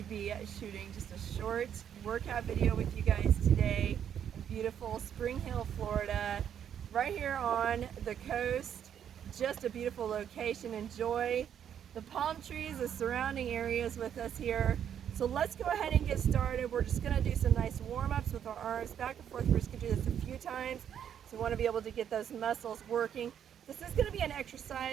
be shooting just a short workout video with you guys today in beautiful Spring Hill, Florida, right here on the coast. Just a beautiful location. Enjoy the palm trees, the surrounding areas with us here. So let's go ahead and get started. We're just going to do some nice warm-ups with our arms back and forth. We're just going to do this a few times. So we want to be able to get those muscles working. This is going to be an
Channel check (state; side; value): quieter; left; 9.1 dB